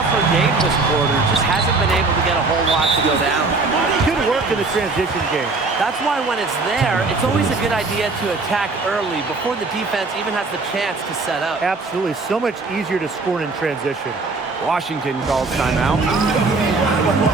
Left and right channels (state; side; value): quieter; left; 3.7 dB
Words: her game this quarter. Just hasn't been able to get a whole lot to go down. Good work in the transition game. That's why when it's there, it's always a good idea to attack early before the defense even has the chance to set up. Absolutely. So much easier to score in transition. Washington calls timeout.